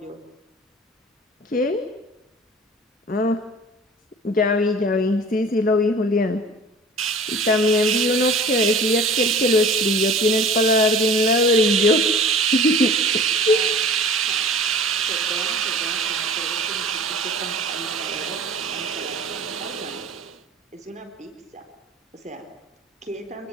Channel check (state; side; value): normal; both; correlation 0.42